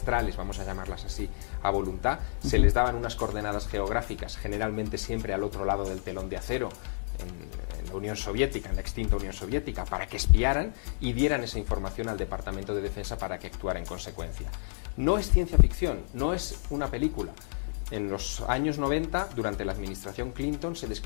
vamos a llamarlas así, a voluntad. Se les daban unas coordenadas geográficas, generalmente siempre al otro lado del telón de acero, en la Unión Soviética, en la extinta Unión Soviética, para que espiaran y dieran esa información al Departamento de Defensa para que actuara en consecuencia. No es ciencia ficción, no es una película. En los años 90, durante la administración Clinton, se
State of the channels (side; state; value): right; silent; digital silence